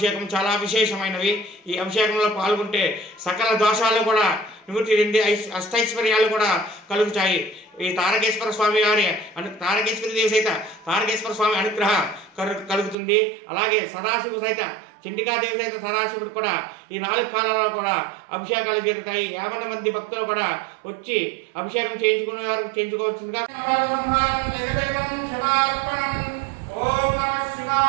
చాలా విశేషమైనవి. ఈ అభిషేకంలో పాల్గొంటే సకల దోషాలు కూడా నివృత్తి చెంది అష్టైశ్వర్యాలు కూడా కలుగుతాయి. ఈ తారకేశ్వర స్వామి వారి తారకేశ్వరి దేవి సైత తారకేశ్వర స్వామి అనుగ్రహం కలుగుతుంది. అలాగే సదాశివుడు సైత చండికాదేవి సైత సదాశివుడు కూడా ఈ 4 కాలాల్లో కూడా అభిషేకాలు జరుగుతాయి. 50 మంది భక్తులు కూడా వచ్చి అభిషేకం చేయించుకునే వారు చేయించుకోవచ్చుగా. ఓం నమః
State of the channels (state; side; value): drops out; left; at 13.0 s